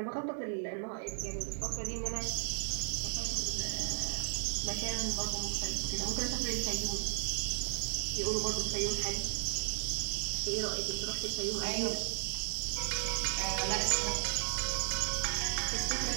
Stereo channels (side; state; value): left; silent; digital silence